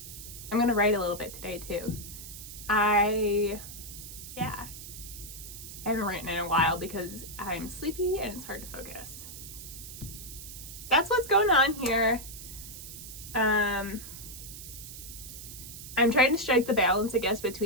gonna write a little bit today too. I haven't written in a while because I'm sleepy and it's hard to focus. That's what's going on here. I'm trying to strike the balance, I guess,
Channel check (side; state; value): right; noise; hiss, 12 dB below the sound